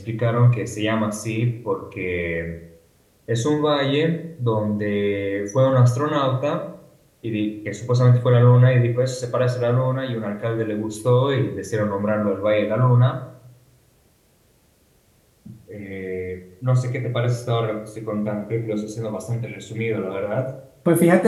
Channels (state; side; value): identical; both; correlation 1.00